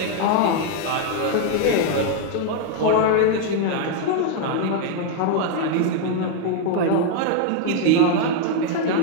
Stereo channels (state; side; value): different; both; correlation 0.00